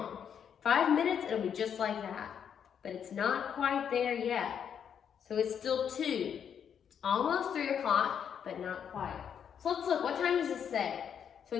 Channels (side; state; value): right; quieter; 8.1 dB